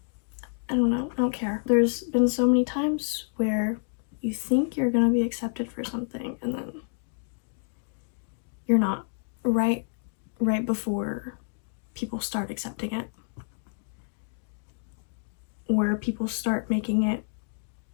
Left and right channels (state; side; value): silent; right; digital silence